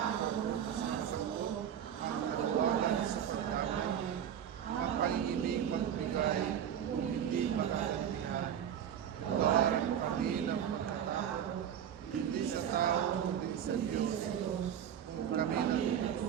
sa sagot, ang kalawagan sa pagdamay, ang pag-ibig magbigay kung hindi makagantihan. Tuwaran mo kami ng pagkatao, hindi sa tao, kundi sa Diyos. Kung kami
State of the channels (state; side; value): quieter; left; 9.3 dB